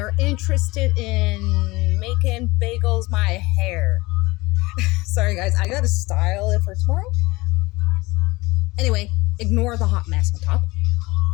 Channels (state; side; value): quieter; right; 21.9 dB